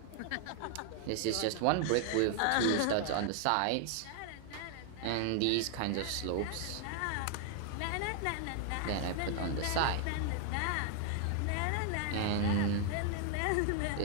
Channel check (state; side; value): different; both; correlation 0.00